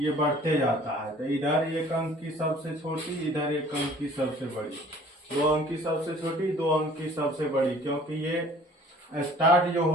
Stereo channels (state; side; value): normal; both; correlation 0.52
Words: बढ़ते जाता है। तो इधर एक अंक की सबसे छोटी, इधर एक अंक की सबसे बड़ी, 2 अंक की सबसे छोटी, 2 अंक की सबसे बड़ी, क्योंकि ये स्टार्ट जो